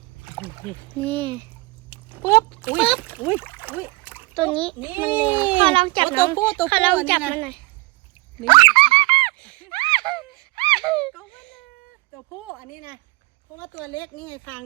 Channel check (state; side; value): quieter; left; 23.8 dB